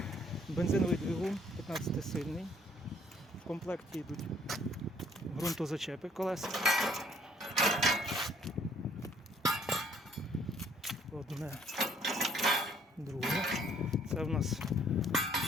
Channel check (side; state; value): both; normal; correlation 0.62